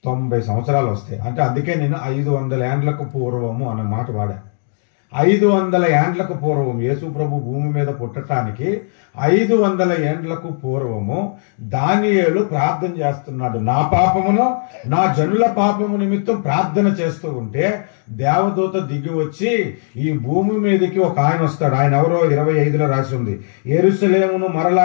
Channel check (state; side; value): silent; right; 68 dB below the other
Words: సంవత్సరాలు వస్తాయి. అంటే అందుకే నేను 500 ఏండ్లకు పూర్వము అన్న మాట వాడా. 500 ఏండ్లకు పూర్వం యేసు ప్రభు భూమి మీద పుట్టడానికి 500 ఏండ్లకు పూర్వము దానియేలు ప్రార్థన చేస్తున్నాడు. నా పాపమును నా జనుల పాపము నిమిత్తం ప్రార్థన చేస్తూ ఉంటే దేవదూత దిగి వచ్చి ఈ భూమి మీదకి ఒక ఆయన వస్తాడు. ఆయన ఎవరో 25లో రాసి ఉంది. యెరూషలేమును